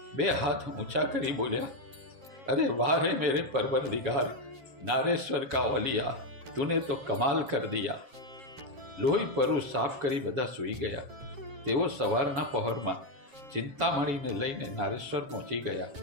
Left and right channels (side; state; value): left; late; 7.4 ms